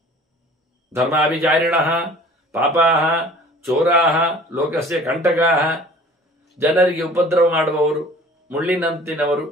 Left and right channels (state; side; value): normal; both; correlation 0.48